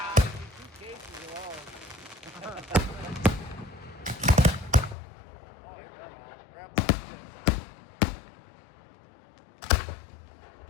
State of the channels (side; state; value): right; drops out; at 5.0 s